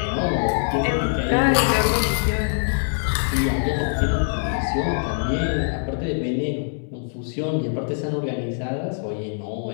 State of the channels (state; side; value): silent; right; 63 dB below the other